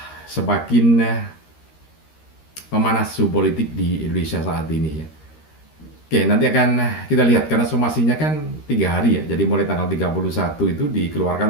semakin memanas suhu politik di Indonesia saat ini ya. Oke, nanti akan kita lihat karena somasinya kan 3 hari ya. Jadi mulai tanggal 31 itu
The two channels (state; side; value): late; right; 13 ms